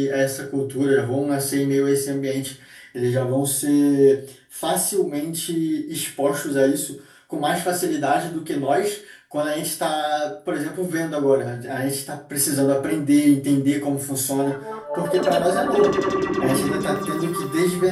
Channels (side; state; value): both; identical; correlation 1.00